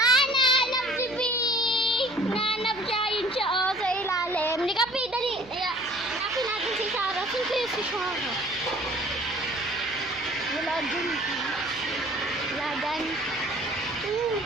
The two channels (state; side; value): noise; left; hum, 20 dB below the sound